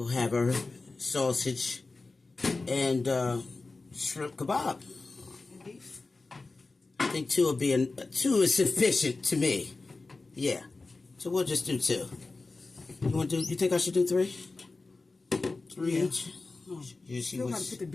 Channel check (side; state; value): right; quieter; 3.6 dB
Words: have our sausage and shrimp kebab. I think 2 will be 2 is sufficient to me. Yeah, so we'll just do 2. You think I should do 3? 3 each? You still got to put the